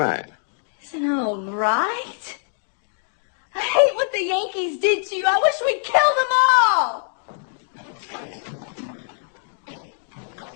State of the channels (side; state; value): right; silent; digital silence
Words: Isn't it all right? I hate what the Yankees did to you. I wish we'd kill them all.